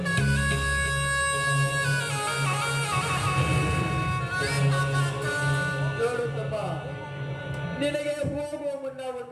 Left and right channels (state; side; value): identical; both; correlation 1.00